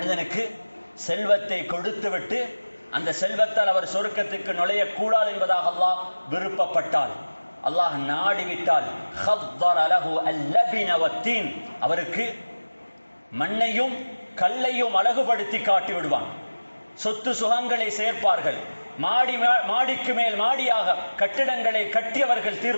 செல்வத்தை கொடுத்துவிட்டு அந்த செல்வத்தால் அவர் சொர்க்கத்துக்கு நுழையக்கூடாது என்பதாக அல்லாஹ் விருப்பப்பட்டால், அல்லாஹ் நாடிவிட்டால், ஹத்தர லஹு அல்லபின வத்தீன், அவருக்கு மண்ணையும் கல்லையும் அழகுபடுத்தி காட்டி விடுவான். சொத்து சுகங்களை சேர்ப்பார்கள். மாடிக்கு மேல் மாடியாக கட்டிடங்களை கட்டியவர்கள்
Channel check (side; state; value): both; inverted; correlation -1.00